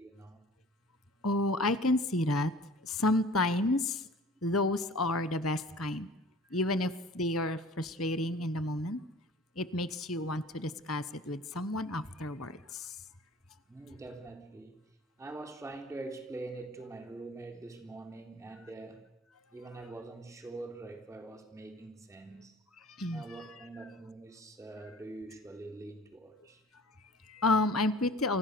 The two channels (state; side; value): normal; both; correlation 0.45